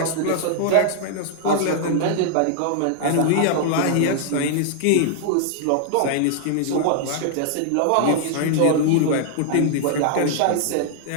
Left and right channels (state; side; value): different; both; correlation -0.01